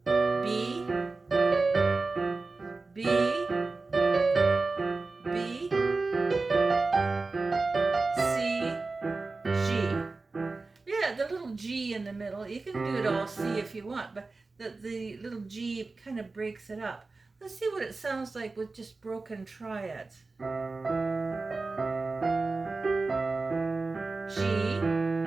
B, B, B, C, G. Yeah, the little G in the middle. You can do it all C if you want, but the little G kind of breaks it up. Let's see what it sounds like with just broken triads. G,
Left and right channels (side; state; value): left; quieter; 3.7 dB